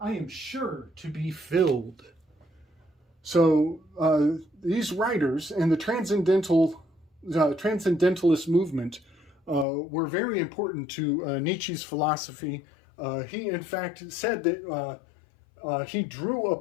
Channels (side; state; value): right; drops out; at 9.7 s